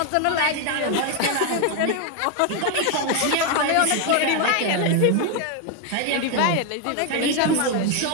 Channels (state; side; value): different; both; correlation 0.01